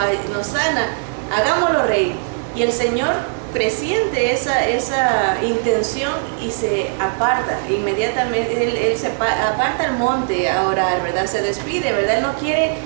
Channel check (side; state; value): left; silent; digital silence